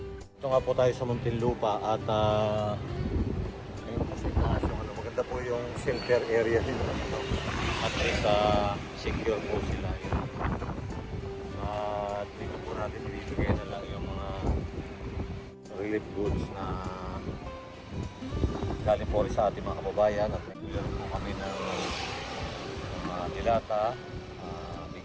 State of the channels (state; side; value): identical; both; correlation 1.00